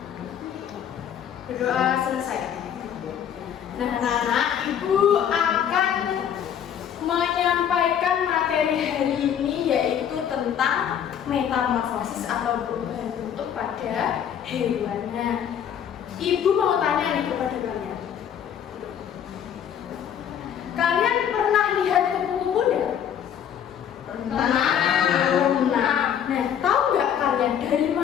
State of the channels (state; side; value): quieter; right; 9.0 dB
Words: berdoa selesai. Nah anak-anak, Ibu akan menyampaikan materi hari ini yaitu tentang metamorfosis atau perubahan bentuk pada hewan. Nah, Ibu mau tanya nih kepada kalian. Kalian pernah lihat kupu-kupu enggak? Pernah. Nah, tahu nggak kalian dari